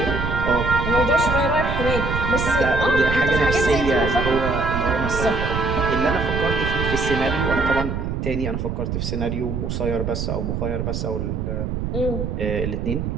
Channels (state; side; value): noise; right; rumble, 2 dB below the sound